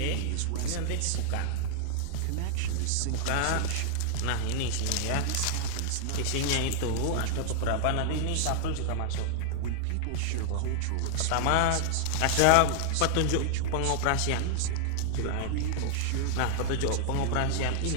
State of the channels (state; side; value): different; both; correlation -0.01